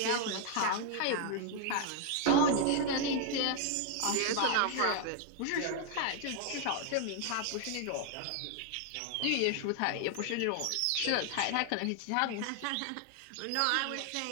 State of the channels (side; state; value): both; different; correlation 0.00